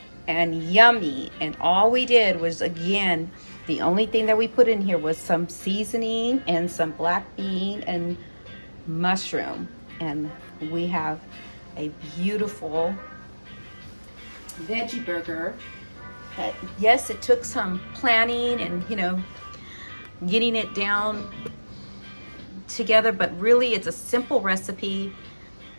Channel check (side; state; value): both; inverted; correlation -1.00